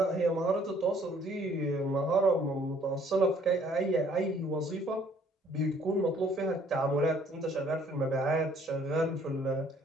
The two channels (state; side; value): normal; both; correlation 0.60